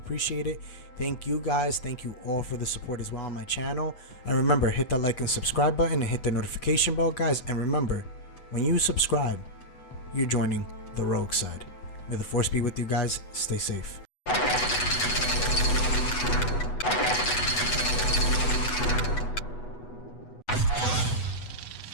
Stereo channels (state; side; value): late; right; 8.2 ms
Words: it. Thank you guys. Thank you all for the support as well on my channel. And remember, hit that like and subscribe button and hit the notification bell, guys. And remember, when you subscribe, you're joining the rogue side. May the force be with you guys. Stay safe.